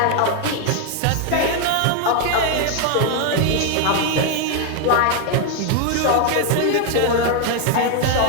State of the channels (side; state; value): both; different; correlation 0.01